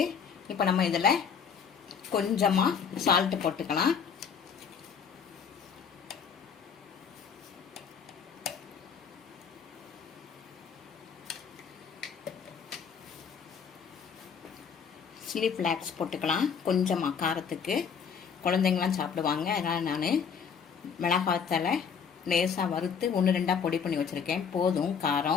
இப்போ நம்ம இதில் கொஞ்சமாக சால்ட்டு போட்டுக்கலாம். சில்லி ஃப்ளாக்ஸ் போட்டுக்கலாம் கொஞ்சமாக, காரத்துக்கு. குழந்தைங்களாம் சாப்பிடுவாங்க, அதனால் நான் மிளகாத்தலை லேசாக வறுத்து 1-2 பொடி பண்ணி வச்சுருக்கேன். போதும்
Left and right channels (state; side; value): quieter; right; 6.7 dB